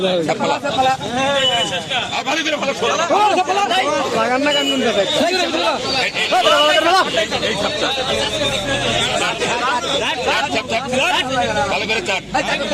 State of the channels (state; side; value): identical; both; correlation 1.00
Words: ভালো করে চাট